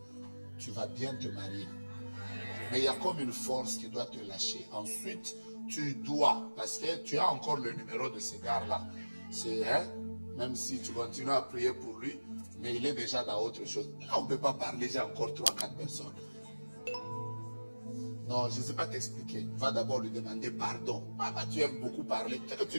tu vas bien te marier. Mais il y a comme une force qui doit te lâcher. Ensuite, tu dois, parce que tu as encore le numéro de ce gars-là. C'est, même si tu continues à prier pour lui, mais il est déjà dans autre chose. Là, on ne peut pas parler, j'ai encore 3-4 personnes. Non, je ne sais pas t'expliquer. Va d'abord lui demander pardon. Papa, tu aimes beaucoup parler. Peut-être que tu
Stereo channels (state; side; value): inverted; both; correlation -1.00